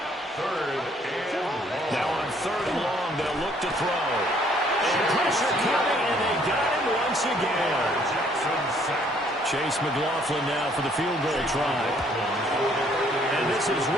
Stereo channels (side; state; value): both; normal; correlation 0.63